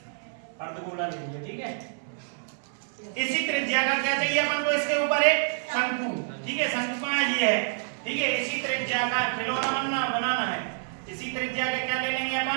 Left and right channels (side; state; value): left; silent; 60 dB below the other